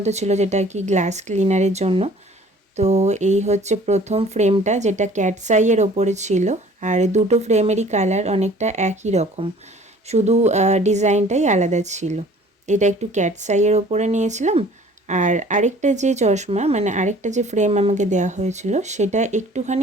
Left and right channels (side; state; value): both; normal; correlation 0.51